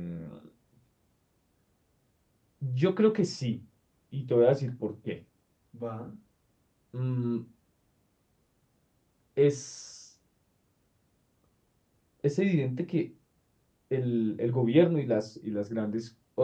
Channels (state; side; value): identical; both; correlation 1.00